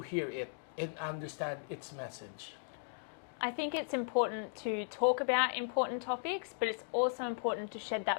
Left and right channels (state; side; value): silent; right; digital silence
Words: hear it and understand its message? I think it's important to talk about important topics, but it's also important to shed